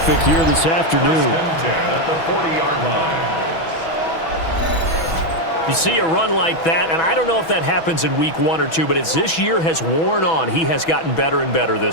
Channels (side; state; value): right; late; 6.1 ms